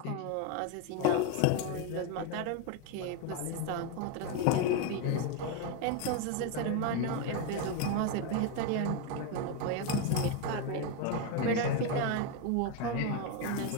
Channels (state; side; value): different; both; correlation 0.02